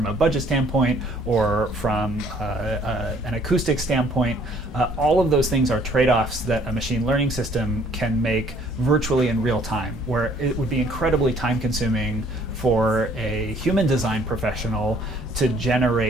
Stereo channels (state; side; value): normal; both; correlation 0.59